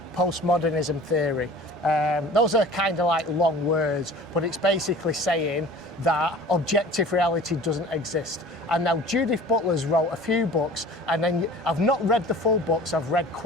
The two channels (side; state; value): both; normal; correlation 0.44